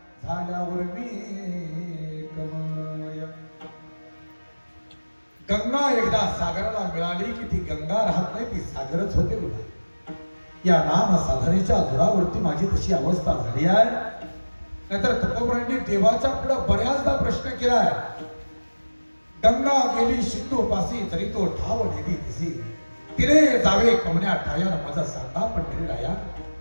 झाल्यावर मी कमय. गंगा एकदा सागराला मिळाली की ती गंगा राहत नाही, ती सागरच होते बघा. या नाम साधनेच्या जोरावरती माझी तशी अवस्था झाली आहे. नाहीतर तुकोबरांनी देवाच्या पुढे बऱ्याचदा प्रश्न केलाय. गंगा गेली सिंधू पासी तरी तो ठाव नेली दिसी, तिने जावे कमण्या ठायान माझा सांगा पण तरी राया.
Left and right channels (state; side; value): inverted; both; correlation -1.00